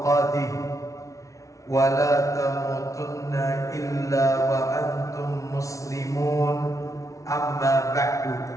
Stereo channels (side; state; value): right; late; 0.16 ms